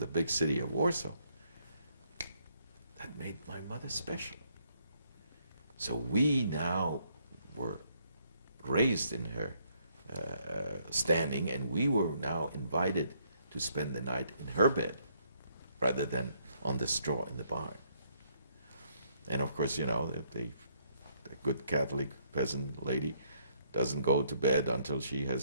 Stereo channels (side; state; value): both; inverted; correlation -0.70